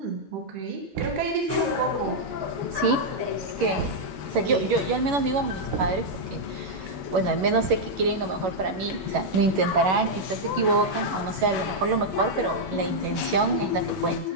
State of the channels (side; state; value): left; late; 11 ms